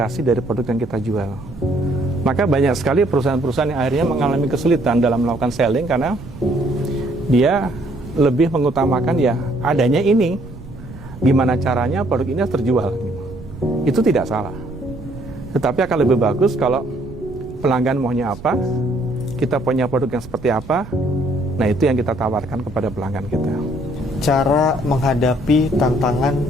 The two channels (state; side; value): noise; right; rumble, 16 dB below the sound